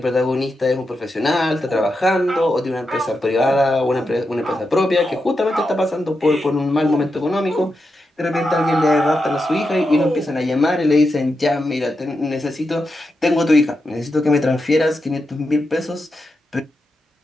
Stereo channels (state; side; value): normal; both; correlation 0.87